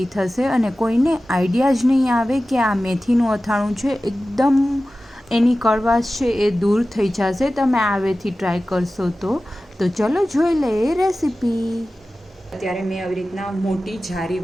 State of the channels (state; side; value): normal; both; correlation 0.95